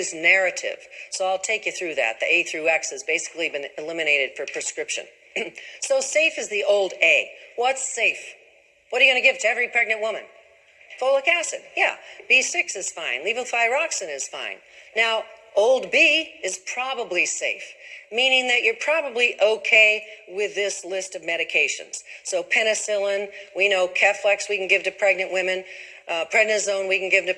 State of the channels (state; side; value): identical; both; correlation 1.00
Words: narrative. So I'll take you through that. The A through X has basically been eliminated for prescription. So safe is the old A. What's safe? What are you going to give to every pregnant woman? Folic acid, yeah. B6 is fine. Levothyroxine is fine. Now, old B is probably safe, meaning that you're probably okay with this list of medications. So penicillin, we know Keflex we can give to pregnant women, prednisone we can give to